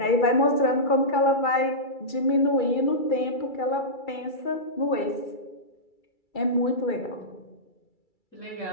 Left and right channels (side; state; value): right; late; 2.3 ms